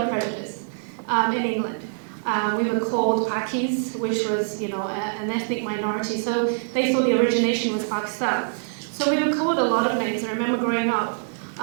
prejudice in England. We were called Pakis, which was, an ethnic minority. So they thought the origination was Pakistan. So we were called a lot of names. I remember growing up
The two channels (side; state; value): left; silent; digital silence